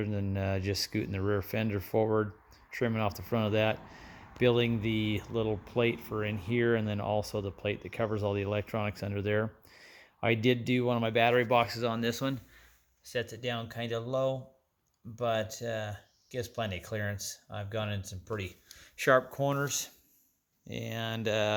than just scooting the rear fender forward, trimming off the front of that, building the little plate for in here, and then also the plate that covers all the electronics under there. I did do one of my battery boxes on this one. Sets it down kind of low, but gives plenty of clearance. I've gone in some pretty sharp corners. And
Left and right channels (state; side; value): identical; both; correlation 1.00